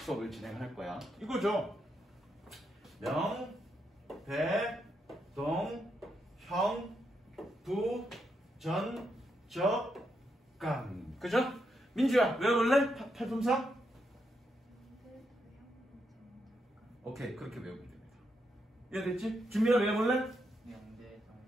수업을 진행할 거야. 이거죠. 명, 대, 동, 형, 부, 전, 적, 감. 그죠? 민주야 외워볼래? 팔품사? 오케이 그렇게 외우면 됩니다. 이해됐지? 준비를 외워볼래?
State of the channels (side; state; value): both; normal; correlation 0.81